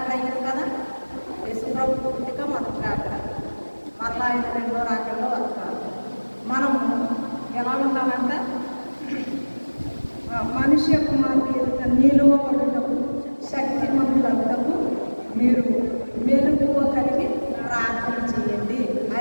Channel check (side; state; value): both; inverted; correlation -1.00